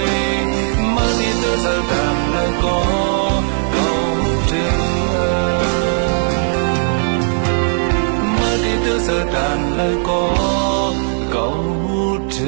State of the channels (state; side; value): silent; left; 63 dB below the other